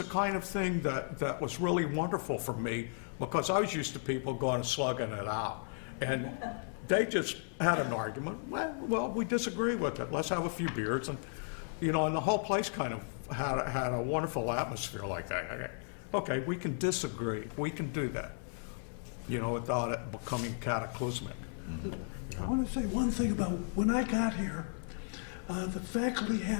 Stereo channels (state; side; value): silent; right; 55 dB below the other